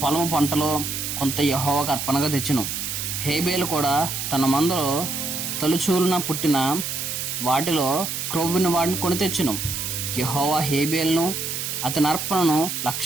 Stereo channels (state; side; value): noise; right; hiss, 4 dB below the sound